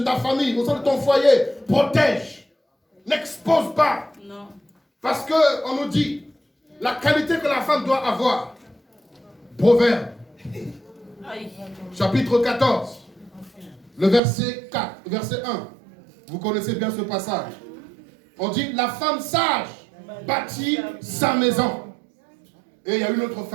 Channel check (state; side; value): drops out; left; at 14.2 s